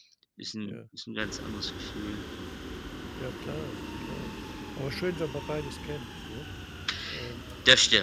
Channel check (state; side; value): identical; both; correlation 1.00